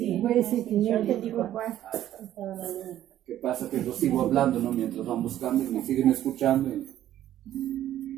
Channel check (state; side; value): quieter; left; 12.4 dB